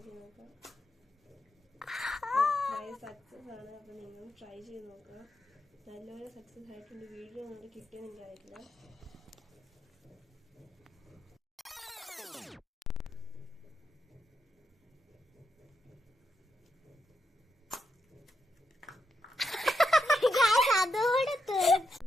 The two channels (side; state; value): both; normal; correlation 0.83